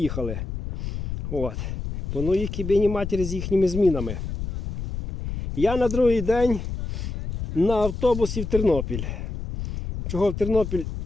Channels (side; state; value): left; noise; rumble, 6 dB below the sound